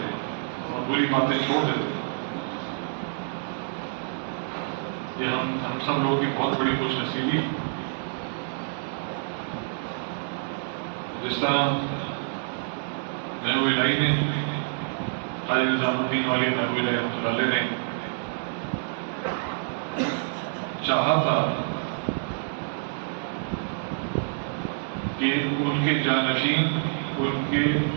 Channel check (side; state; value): left; silent; digital silence